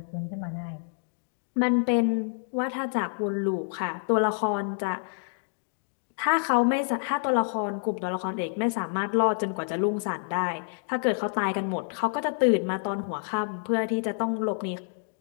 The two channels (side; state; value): right; silent; digital silence